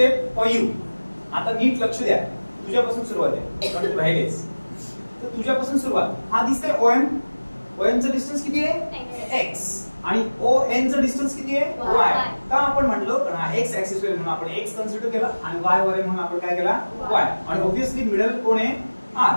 for you. आता नीट लक्ष द्या, तुझ्यापासून सुरुवात आहे कारण तू राहिलेस. तर तुझ्यापासून सुरुवात. हा दिसतंय OM. OM चं डिस्टन्स किती आहे x आणि ON चं डिस्टन्स किती आहे y. का आपण म्हणलो कारण हा x ऍक्सिस वर म्हणून आपण x कन्सिडर केला आणि y वर म्हणून आपण काय केला y. आणि ऑब्वियसली मिडल कोण आहे r.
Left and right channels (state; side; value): inverted; both; correlation -1.00